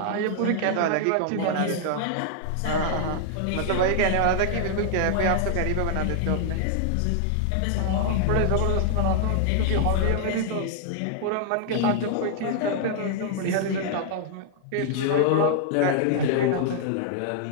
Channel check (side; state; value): both; different; correlation -0.01